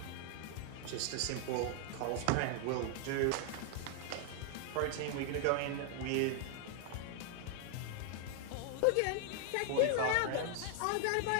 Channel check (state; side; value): different; both; correlation 0.00